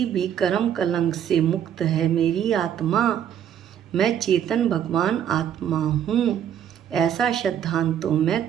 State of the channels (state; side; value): quieter; left; 9.5 dB